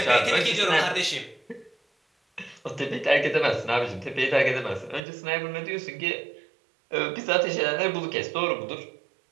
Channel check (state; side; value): drops out; left; at 5.0 s